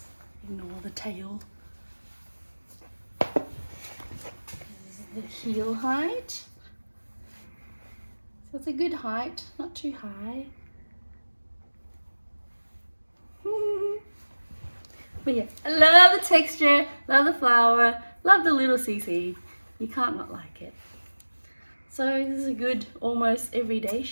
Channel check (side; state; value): both; inverted; correlation -1.00